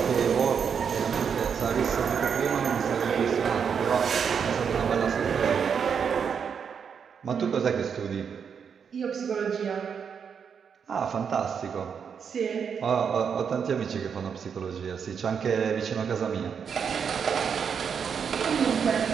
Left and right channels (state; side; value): quieter; left; 6.9 dB